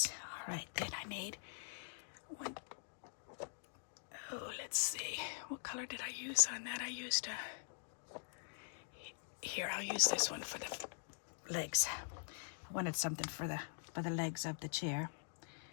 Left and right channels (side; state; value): right; silent; digital silence